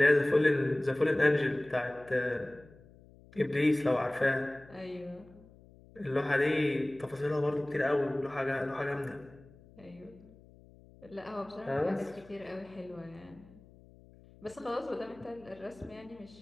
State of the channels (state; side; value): noise; left; hum, 24 dB below the sound